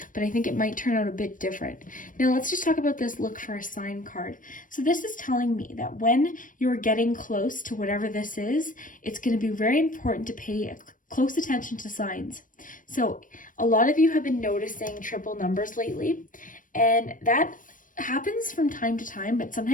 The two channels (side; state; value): right; late; 0.38 ms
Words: but I think it might turn out a bit different. Now let's just talk about this look for a sign card. So this is telling me that when you're getting close to whatever this is, it's going to be very important to pay close attention to signs. So a lot of you have been noticing triple numbers lately, and that happens from time to time, but